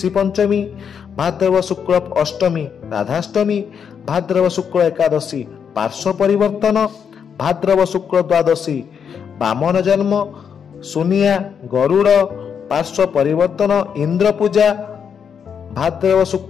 ପଞ୍ଚମୀ, ଭାଦ୍ରବ ଶୁକ୍ଳ ଅଷ୍ଟମୀ, ରାଧାଷ୍ଟମୀ, ଭାଦ୍ରବ ଶୁକ୍ଳ ଏକାଦଶୀ, ପାର୍ଶ୍ୱ ପରିବର୍ତ୍ତନ, ଭାଦ୍ରବ ଶୁକ୍ଳ ଦ୍ୱାଦଶୀ, ବାମନ ଜନ୍ମ, ସୁନିଆ, ଗରୁଡ଼, ପାର୍ଶ୍ୱ ପରିବର୍ତ୍ତନ, ଇନ୍ଦ୍ର ପୂଜା, ଭାଦ୍ରବ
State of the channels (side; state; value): right; quieter; 7.2 dB